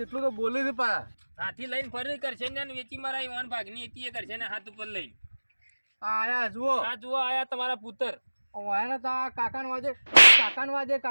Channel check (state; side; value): inverted; both; correlation -1.00